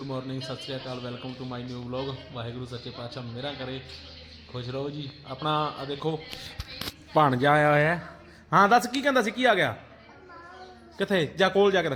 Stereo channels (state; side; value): identical; both; correlation 1.00